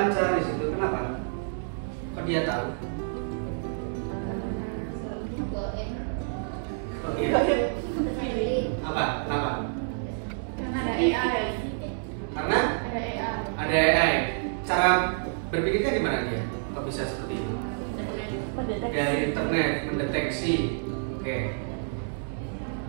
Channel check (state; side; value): silent; left; 59 dB below the other